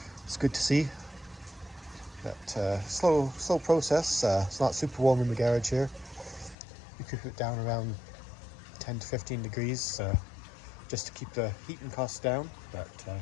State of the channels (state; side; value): drops out; right; at 6.6 s